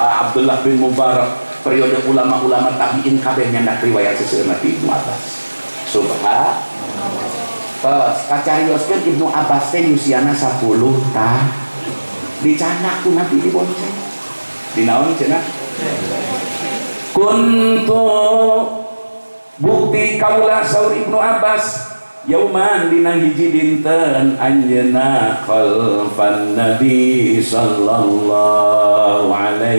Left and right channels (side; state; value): both; inverted; correlation -1.00